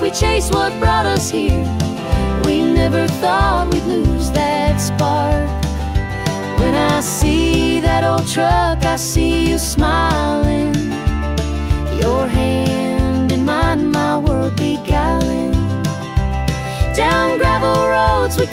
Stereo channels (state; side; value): identical; both; correlation 1.00